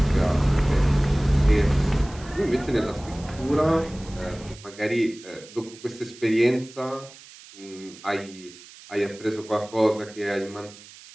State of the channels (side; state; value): right; noise; hiss, 20 dB below the sound